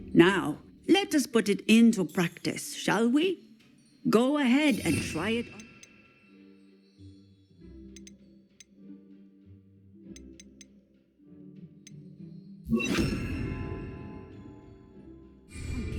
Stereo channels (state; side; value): identical; both; correlation 1.00